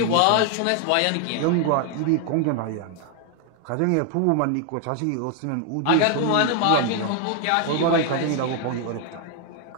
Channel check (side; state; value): both; different; correlation 0.00